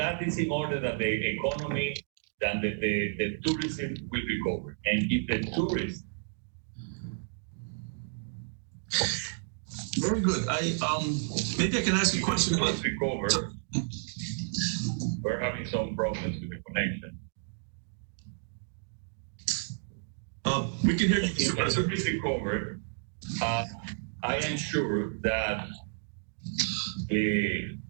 is in order that the economy and the tourism will recover. And if the tourists very good. Maybe I can ask you a question about recover. Sure. We're having some problems with the connection. We can hear you. If the tourists recover, I am sure that the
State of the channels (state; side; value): silent; left; digital silence